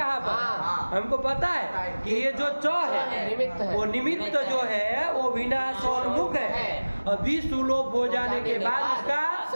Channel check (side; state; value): both; inverted; correlation -1.00